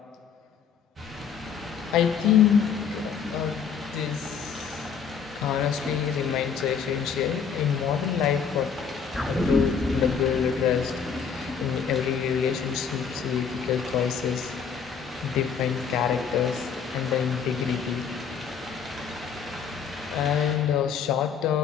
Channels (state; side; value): quieter; right; 6.8 dB